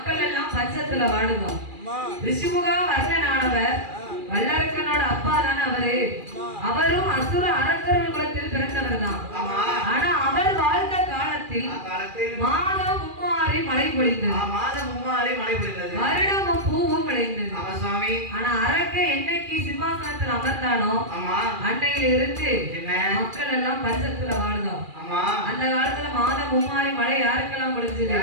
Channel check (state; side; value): late; left; 2.4 ms